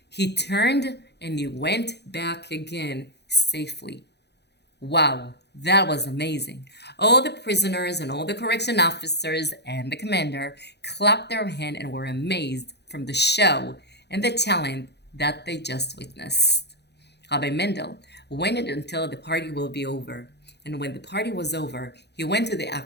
he turned and he went back again safely. Wow, that was amazing. All the prisoners and all the correction officers and the commander clapped their hands and were amazed from the show and the talent that they just witnessed. Rabbi Mendel waited until the party will be over. And when the party was over, he went to the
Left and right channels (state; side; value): late; right; 0.49 ms